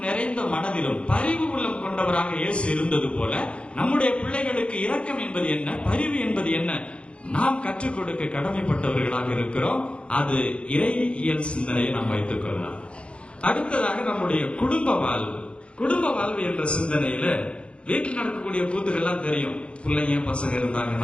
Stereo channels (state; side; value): late; right; 0.059 ms